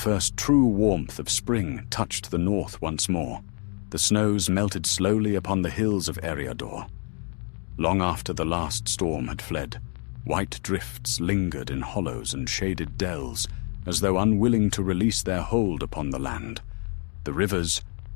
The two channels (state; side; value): quieter; right; 39.6 dB